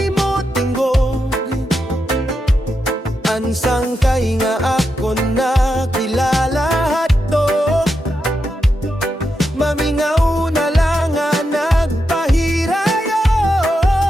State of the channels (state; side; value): normal; both; correlation 0.86